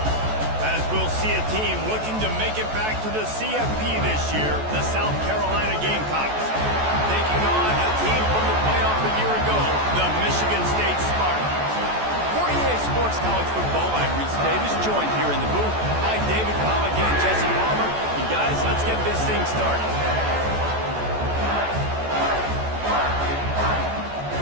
As we'll see a team looking to make it back to the CFP this year, the South Carolina Gamecocks. Taking on a team from the playoff a year ago, the Michigan State Spartans. For EA Sports College Football, I'm Reese Davis, joined here in the booth by David Pollack and Jesse Palmer. And guys, let's get this thing started.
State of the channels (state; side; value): late; left; 14 ms